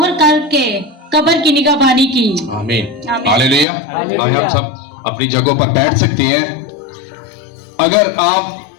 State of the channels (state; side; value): drops out; right; at 3.7 s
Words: کر کے قبر کی نگہبانی کی. آمین. ہاللیلویا. آئے ہم سب اپنی جگہوں پر بیٹھ سکتے ہیں. اگر آپ